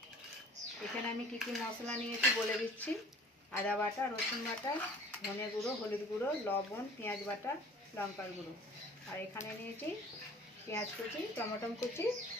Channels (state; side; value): normal; both; correlation 0.48